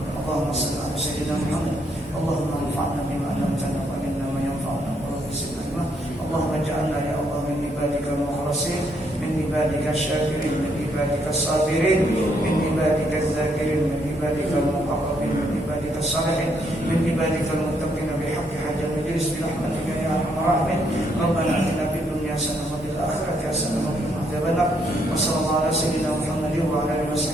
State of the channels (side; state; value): both; normal; correlation 0.73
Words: Allahumma salli ala sayyidina Muhammad. Allahumma anfa'na bima 'allamtana wa 'allimna ma yanfa'una wa zidna ilma. Allahumma ij'alna ya Allah min ibadika al-mukhlasin, min ibadika asy-syakirin, min ibadika as-sabirin, min ibadika adh-dhakirin, min ibadika al-muqarrabin, min ibadika as-salihin, min ibadika al-muttaqin bihaqqi hajjal majlis bi rahmatika ya arhamar rahimin. Rabbana atina fid dunya hasanah wa fil akhirati hasanah wa qina adzabannar. Wassallallahu ala sayyidina Muhammadin wa ala alihi